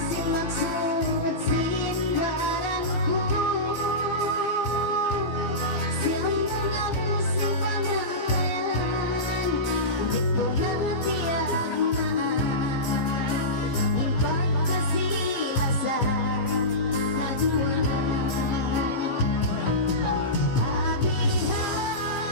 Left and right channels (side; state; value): right; late; 15 ms